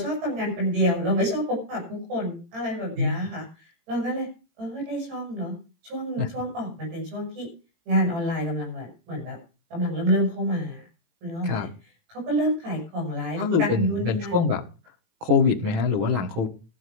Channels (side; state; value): left; late; 18 ms